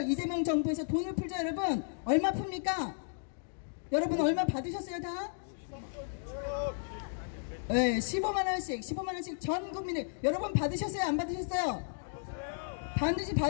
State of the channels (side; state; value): right; silent; digital silence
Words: 이재명 정부에서 돈을 풀죠, 여러분. 얼마 풉니까? 여러분 얼마 받으셨어요, 다? 네, 15만원씩 전 국민을. 여러분 받으셨어요, 안 받으셨어요? 반드시